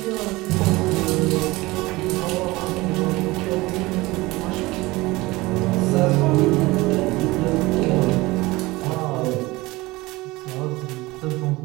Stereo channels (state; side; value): quieter; left; 21.0 dB